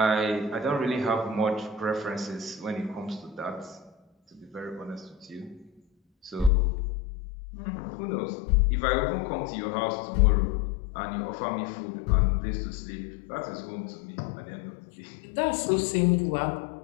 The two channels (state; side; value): drops out; right; at 6.5 s